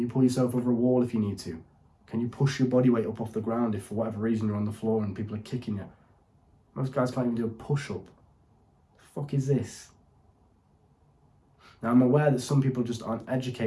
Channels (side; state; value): both; identical; correlation 1.00